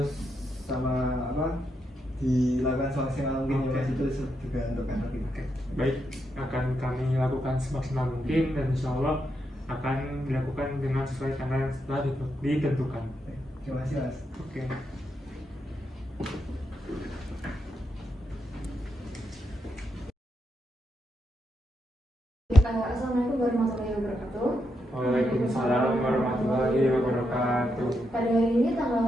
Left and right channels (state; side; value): normal; both; correlation 0.82